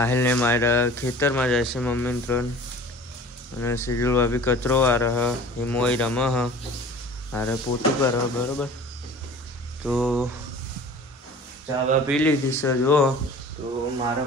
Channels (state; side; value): normal; both; correlation 0.43